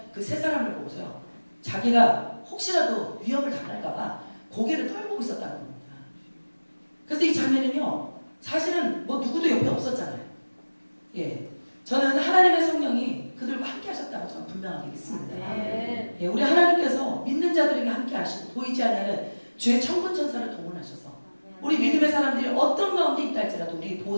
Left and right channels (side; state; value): both; inverted; correlation -1.00